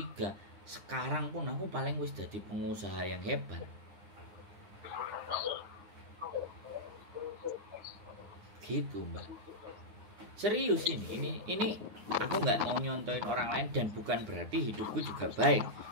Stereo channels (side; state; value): left; late; 9.7 ms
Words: sekarang pun aku paling wis jadi pengusaha yang hebat. Gitu Mbak. Serius ini aku nggak mau nyontoin orang lain, dan bukan berarti hidupku juga baik,